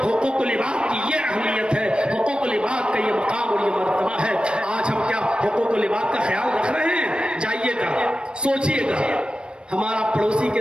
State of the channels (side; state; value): left; late; 0.055 ms